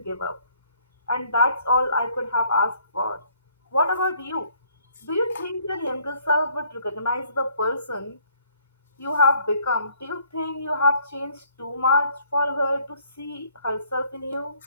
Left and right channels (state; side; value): inverted; both; correlation -0.62